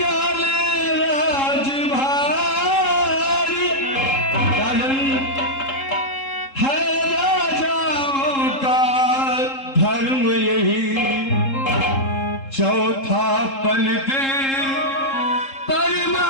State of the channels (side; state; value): right; late; 3.7 ms